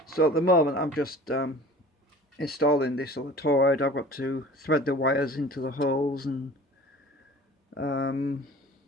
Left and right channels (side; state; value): both; normal; correlation 0.43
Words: So at the moment, I'm just installing this other toroid. I've got to thread the wires into the holes, and